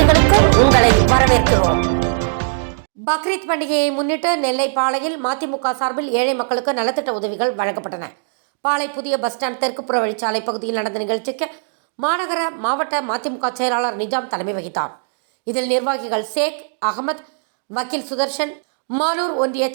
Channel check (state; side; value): silent; left; digital silence